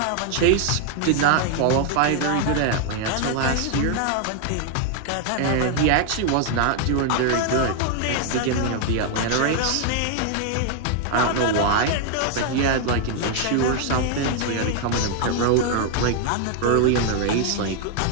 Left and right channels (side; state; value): both; different; correlation 0.00